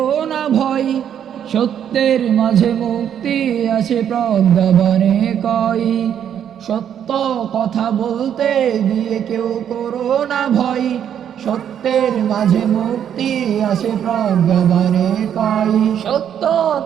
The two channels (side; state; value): left; quieter; 9.2 dB